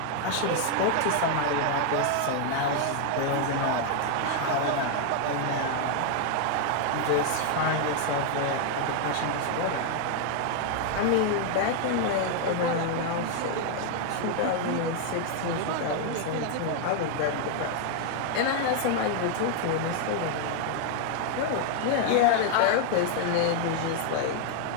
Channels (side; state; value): both; different; correlation 0.00